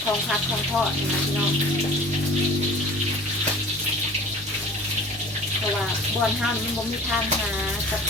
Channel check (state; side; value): normal; both; correlation 0.44